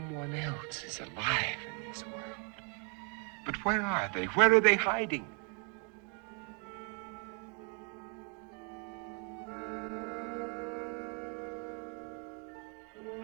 else is alive in this world. But where are they? Where are they hiding?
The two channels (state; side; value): quieter; left; 37.7 dB